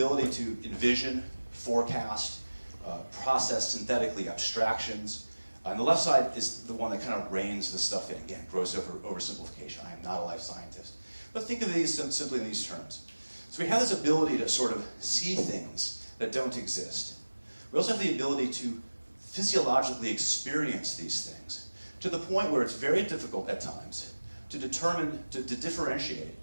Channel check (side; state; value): both; inverted; correlation -1.00